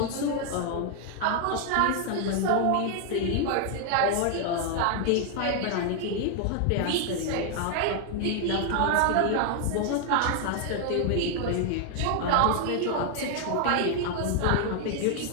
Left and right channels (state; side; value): different; both; correlation 0.00